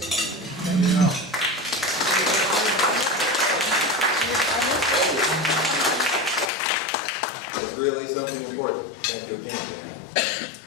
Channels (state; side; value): drops out; right; at 6.5 s